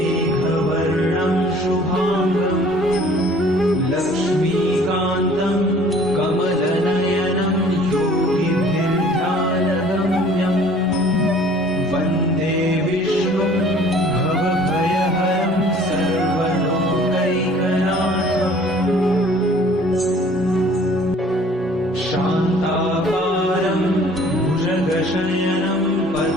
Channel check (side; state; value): both; normal; correlation 0.53